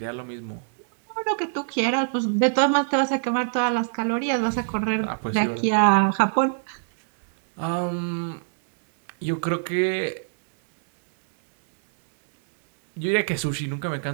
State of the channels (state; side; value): silent; left; digital silence